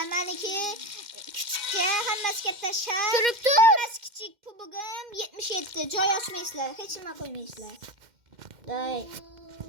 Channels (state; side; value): late; left; 2.1 ms